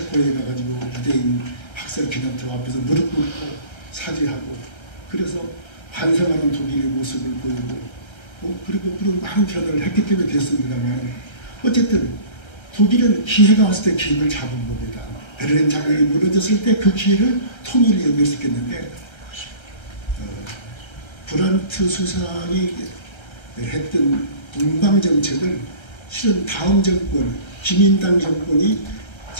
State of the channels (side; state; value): right; late; 1.3 ms